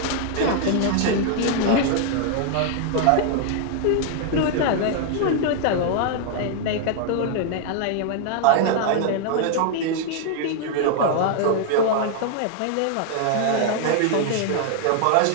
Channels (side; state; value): both; different; correlation 0.00